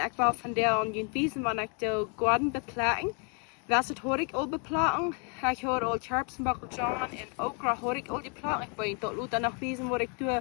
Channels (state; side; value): quieter; right; 37.4 dB